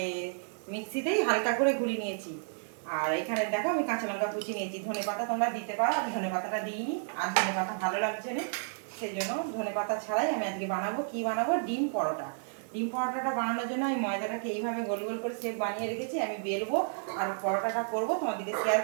মিক্সিতেই হালকা করে গুঁড়িয়ে নিয়েছি। আর এখানে দেখো আমি কাঁচা লঙ্কা কুচি নিয়েছি। ধনে পাতা তোমরা দিতে পারো, আমি ধনে পাতাটা দিইনি, আর ধনে পাতা ভালো লাগছে না, সেই জন্য ধনে পাতা ছাড়াই আমি আজকে বানাবো। কি বানাবো? ডিম পরোটা। ডিম পরোটাটা বানানোর জন্য আমি ময়দাটাকে এইভাবে গোল গোল করে শেপ বানিয়ে রেখেছি। আমি বেলবো আর পরোটাটা করবো, তোমাদেরকে শেয়ার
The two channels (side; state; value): left; silent; digital silence